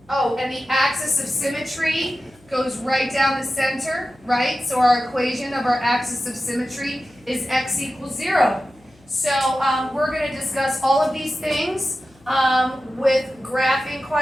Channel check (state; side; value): noise; left; hum, 29 dB below the sound